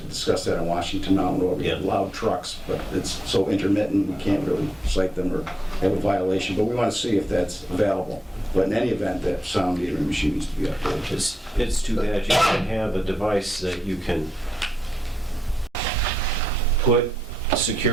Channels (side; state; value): both; normal; correlation 0.84